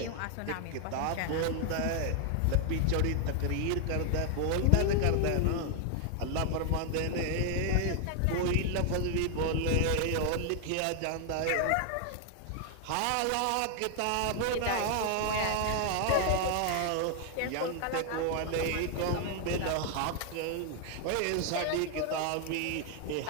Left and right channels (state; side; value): different; both; correlation 0.00